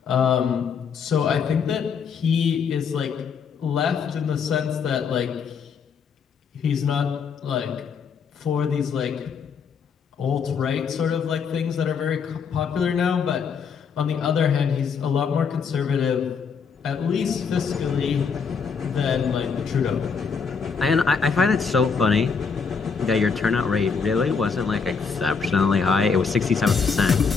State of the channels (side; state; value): right; quieter; 5.9 dB